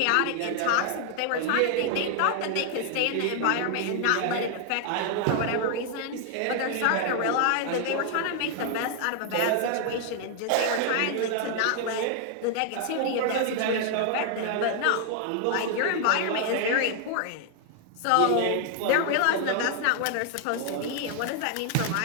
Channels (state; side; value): different; both; correlation 0.00